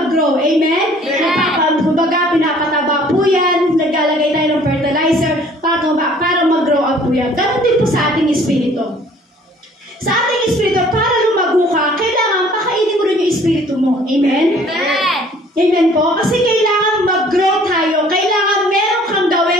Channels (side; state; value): both; normal; correlation 0.55